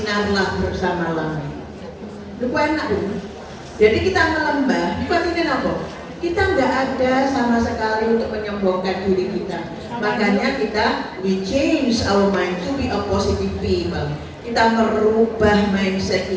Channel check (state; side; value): identical; both; correlation 1.00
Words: bersama langit. Itu enak Bu. Jadi kita melembah, itu artinya apa? Kita nggak ada sama sekali untuk menyombongkan diri kita. Makanya kita we change our mind to be a positive people. Kita merubah mindset